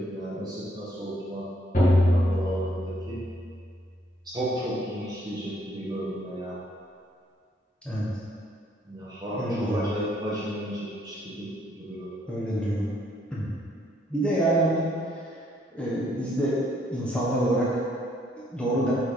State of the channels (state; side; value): normal; both; correlation 0.68